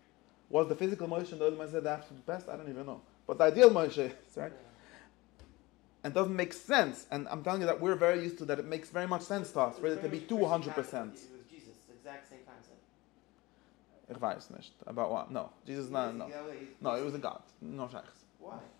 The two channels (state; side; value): quieter; right; 21.4 dB